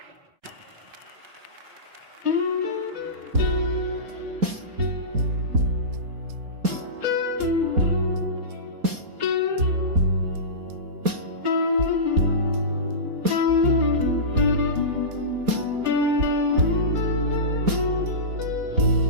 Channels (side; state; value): left; late; 4.2 ms